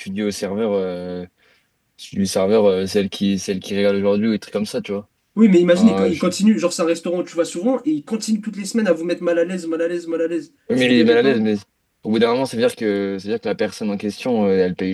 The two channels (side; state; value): both; identical; correlation 1.00